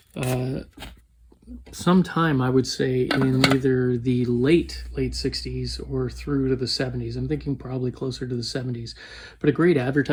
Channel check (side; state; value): both; identical; correlation 1.00